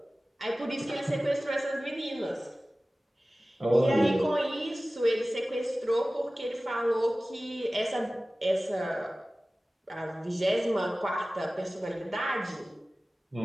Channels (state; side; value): normal; both; correlation 0.97